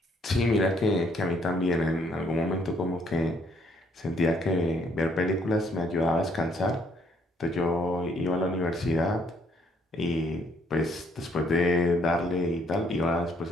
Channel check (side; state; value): both; normal; correlation 0.67